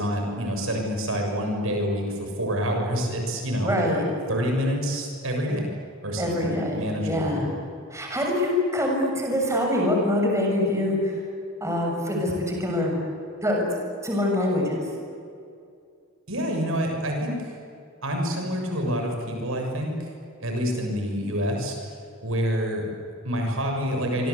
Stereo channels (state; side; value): normal; both; correlation 0.36